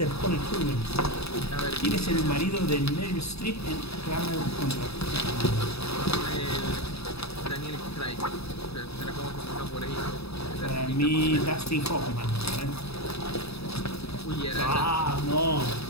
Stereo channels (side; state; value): right; late; 0.78 ms